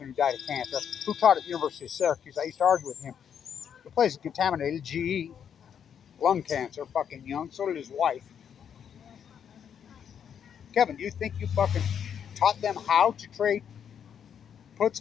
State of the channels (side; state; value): right; quieter; 8.2 dB